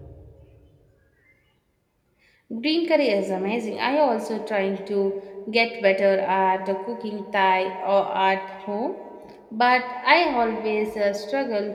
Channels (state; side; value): identical; both; correlation 1.00